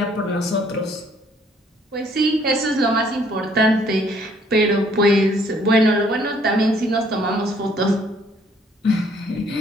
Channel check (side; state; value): both; normal; correlation 0.63